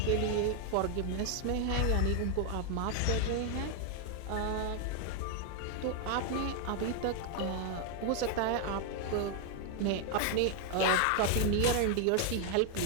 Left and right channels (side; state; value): both; different; correlation 0.00